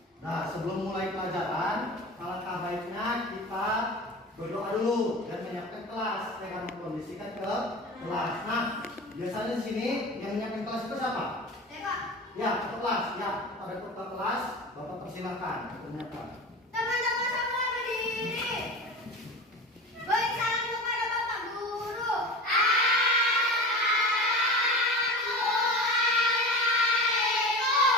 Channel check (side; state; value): both; normal; correlation 0.31